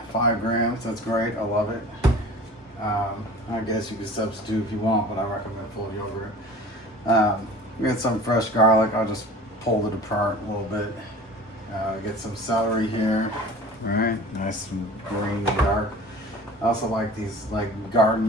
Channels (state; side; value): normal; both; correlation 0.41